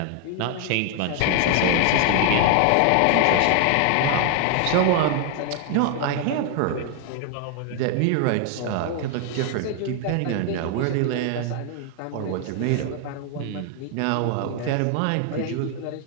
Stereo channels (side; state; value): both; different; correlation 0.00